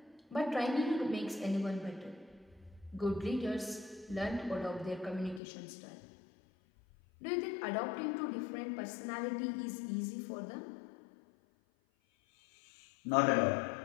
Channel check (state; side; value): drops out; right; at 5.4 s